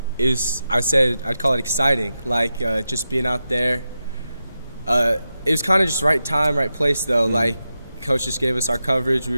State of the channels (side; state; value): both; inverted; correlation -0.90